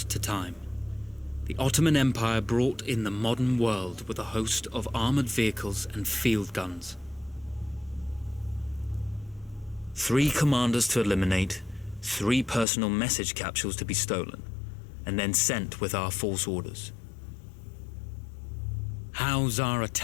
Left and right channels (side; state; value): right; drops out; at 12.7 s